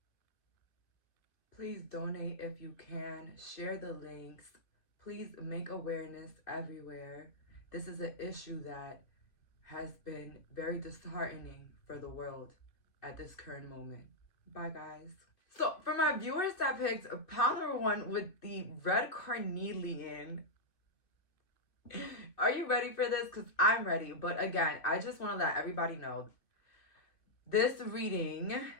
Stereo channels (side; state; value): right; late; 2.5 ms